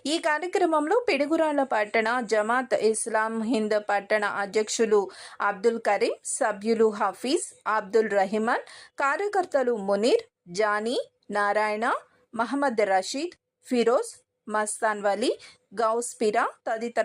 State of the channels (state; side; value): identical; both; correlation 1.00